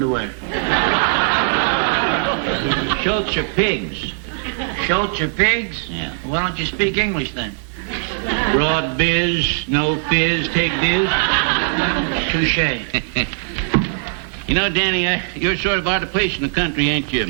Schultz are pigs. Schultz are pigs? Yeah. Well, why don't you speak English then? Broad biz, no fizz, take biz. Touché. You know, Danny, you're sort of out of place in the country, ain't you?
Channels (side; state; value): left; silent; 66 dB below the other